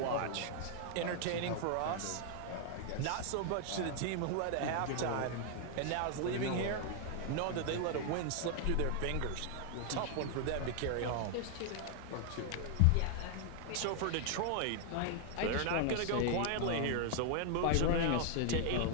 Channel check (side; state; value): both; different; correlation 0.00